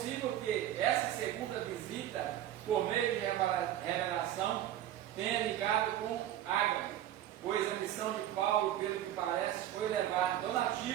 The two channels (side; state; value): left; quieter; 12.1 dB